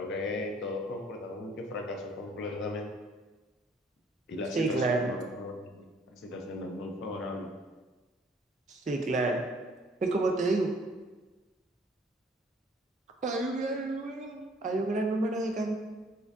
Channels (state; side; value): normal; both; correlation 0.59